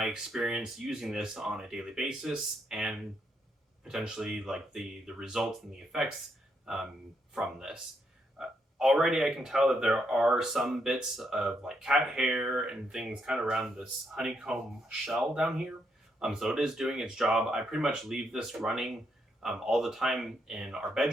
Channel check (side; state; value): both; normal; correlation 0.77